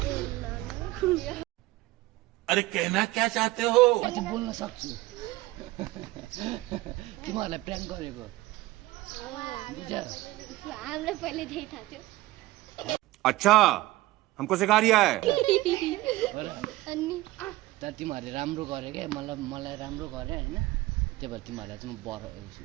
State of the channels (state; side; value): quieter; left; 18.5 dB